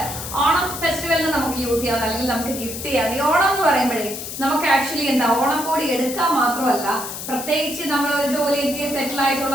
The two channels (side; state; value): left; noise; hiss, 8 dB below the sound